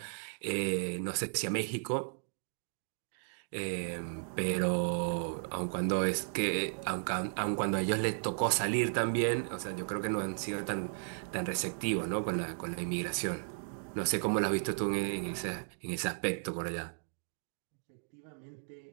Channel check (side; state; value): left; silent; digital silence